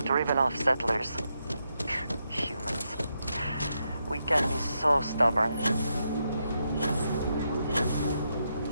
driven off settlers. Humans. We can be so stubborn.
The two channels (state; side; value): inverted; both; correlation -0.82